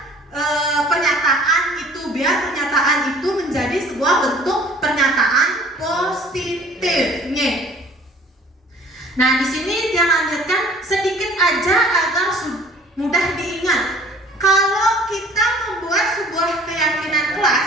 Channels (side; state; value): both; normal; correlation 0.51